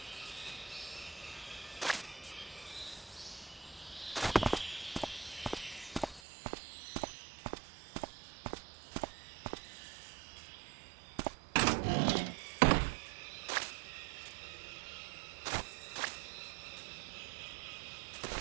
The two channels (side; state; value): left; drops out; at 6.2 s